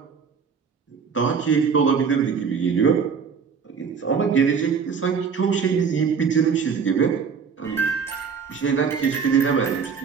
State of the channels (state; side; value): quieter; left; 6.1 dB